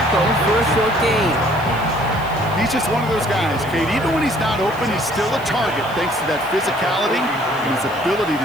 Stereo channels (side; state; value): left; noise; hiss, 22 dB below the sound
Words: for a short gain. He's just one of those guys, Kate. Even when he's not open, he's still a target thanks to that physicality and his ability